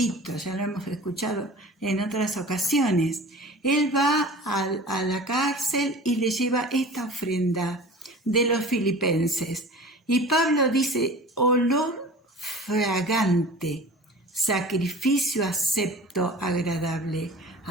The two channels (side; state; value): both; normal; correlation 0.40